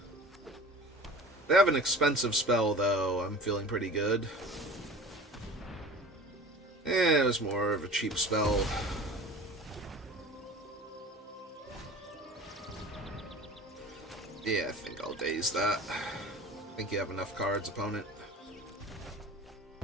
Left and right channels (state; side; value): normal; both; correlation 0.39